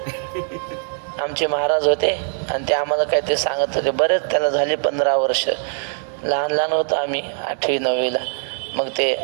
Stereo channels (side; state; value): left; silent; 63 dB below the other